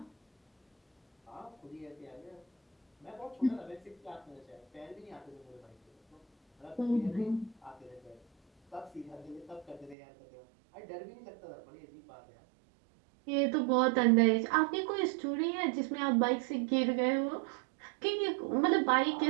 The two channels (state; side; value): drops out; left; at 10.0 s